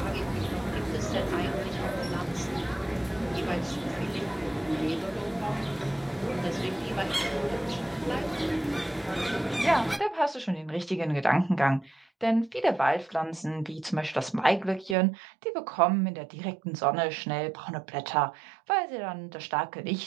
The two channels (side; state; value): left; drops out; at 15.0 s